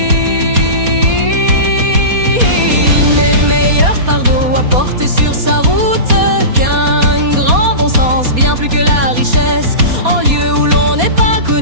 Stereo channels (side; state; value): left; late; 4.2 ms